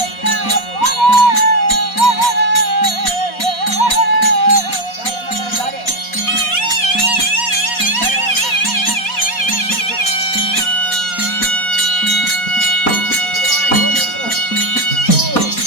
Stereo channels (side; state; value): right; late; 4.2 ms